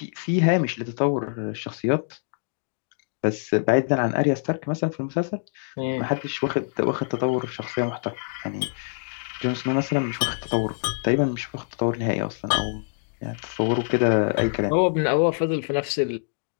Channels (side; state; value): right; silent; digital silence